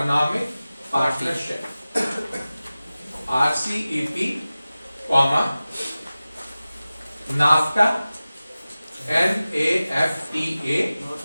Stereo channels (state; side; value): inverted; both; correlation -0.96